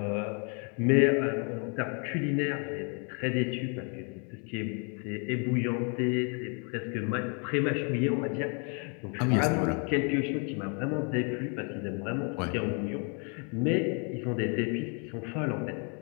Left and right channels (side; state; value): right; quieter; 37.5 dB